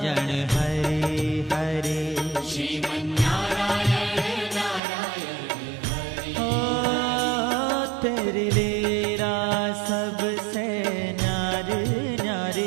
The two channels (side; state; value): left; drops out; at 4.8 s